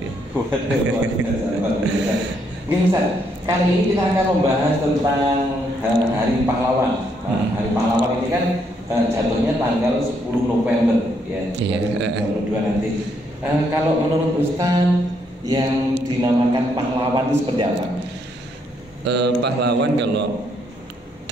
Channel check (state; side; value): normal; both; correlation 0.73